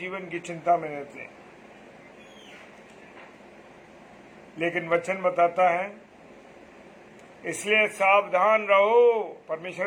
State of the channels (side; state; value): both; identical; correlation 1.00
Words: की चिंता में रहते हैं। लेकिन वचन बताता है, इसलिए सावधान रहो।